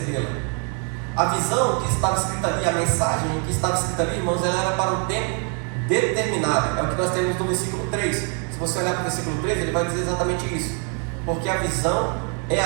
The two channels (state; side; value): quieter; left; 39.2 dB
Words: A visão que estava escrita ali, a mensagem que estava escrita ali, irmãos, ela era para um tempo determinado. É o que nós temos no versículo 3. Se você olhar para o versículo 3, ele vai dizer exatamente isso. Porque a visão é